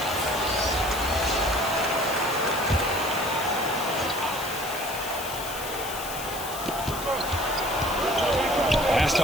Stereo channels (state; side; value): noise; left; hiss, 9 dB below the sound